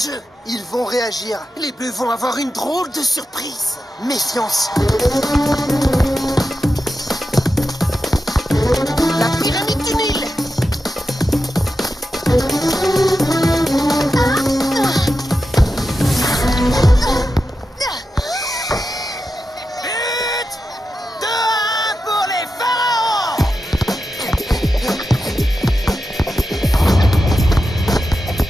Ils vont réagir. Les Bleus vont avoir une drôle de surprise. Méfiance. La pyramide du Nil. But 2-1 pour les Pharaons.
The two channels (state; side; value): normal; both; correlation 0.90